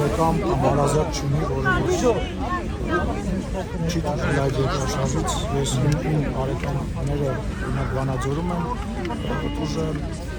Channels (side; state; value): both; identical; correlation 1.00